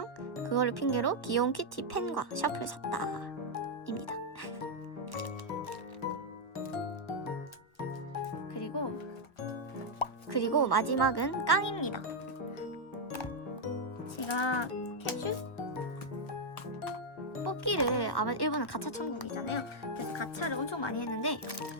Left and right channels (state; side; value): late; right; 1.6 ms